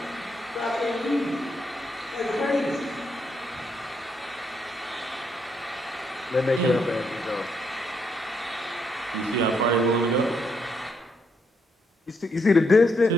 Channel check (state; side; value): normal; both; correlation 0.76